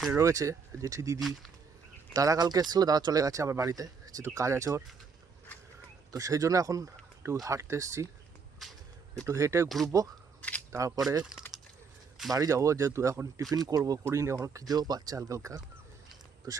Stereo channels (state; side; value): quieter; left; 5.5 dB